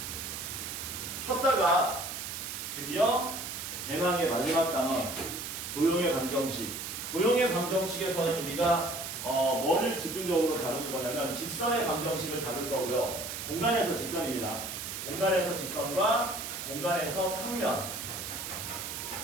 쉬었다가 드디어 대망의 마지막 단원 도형의 방정식. 도형의 방정식에서는 우리가 뭐를 집중적으로 다루는 거냐면 직선의 방정식을 다룰 거고요. 공간에서 직선입니다. 공간에서 직선과 공간에서 평면,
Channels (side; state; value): right; noise; hiss, 6 dB below the sound